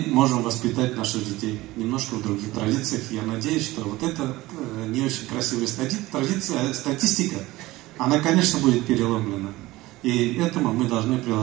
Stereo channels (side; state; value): left; quieter; 18.7 dB